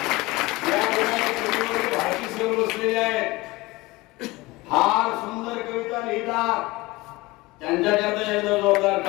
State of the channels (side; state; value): right; quieter; 21.4 dB